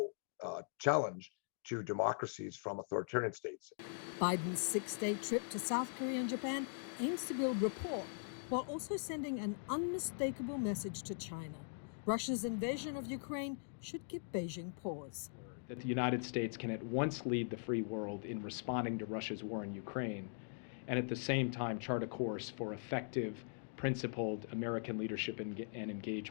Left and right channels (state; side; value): silent; right; digital silence